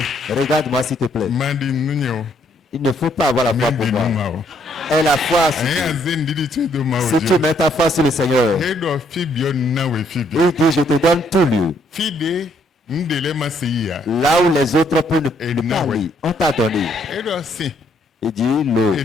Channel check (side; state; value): both; normal; correlation 0.69